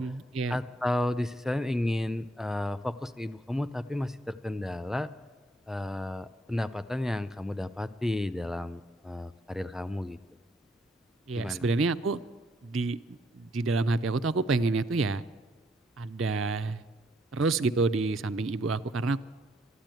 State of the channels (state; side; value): normal; both; correlation 0.71